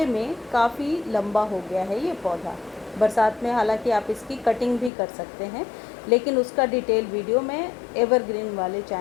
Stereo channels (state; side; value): drops out; right; at 4.9 s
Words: में काफ़ी लंबा हो गया है ये पौधा। बरसात में हालांकि आप इसकी कटिंग भी कर सकते हैं, लेकिन उसका डिटेल वीडियो मैं एवरग्रीन वाले